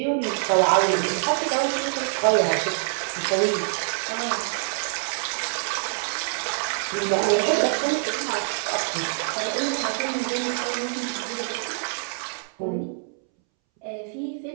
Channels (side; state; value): left; silent; 62 dB below the other